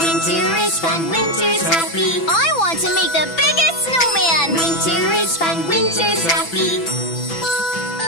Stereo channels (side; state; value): right; late; 6.0 ms